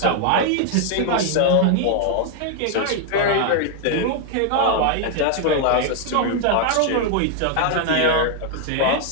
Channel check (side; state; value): both; different; correlation 0.00